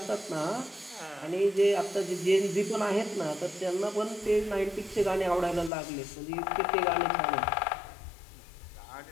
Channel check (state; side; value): drops out; right; at 5.7 s